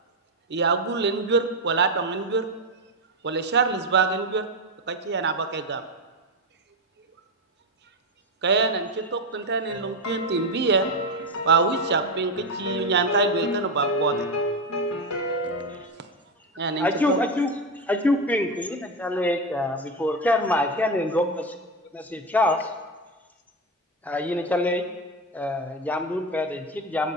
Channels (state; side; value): normal; both; correlation 0.13